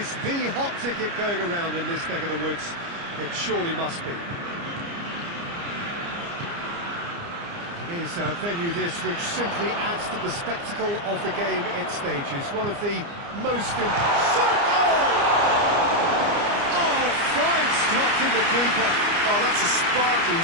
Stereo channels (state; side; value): late; left; 29 ms